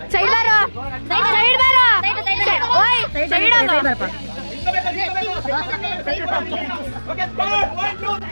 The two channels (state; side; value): inverted; both; correlation -1.00